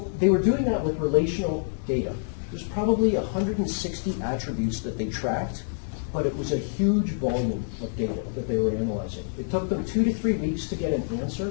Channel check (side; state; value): right; silent; digital silence